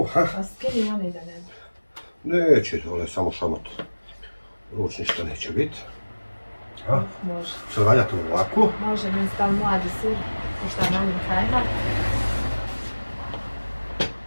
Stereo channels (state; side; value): inverted; both; correlation -1.00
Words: A skini oni da ne bi. Neće, dole samo šamot. Ruč ništa neće biti. Može. Što valja to ovako? Može mi stav mladi sir, pošto je manjim kajmak.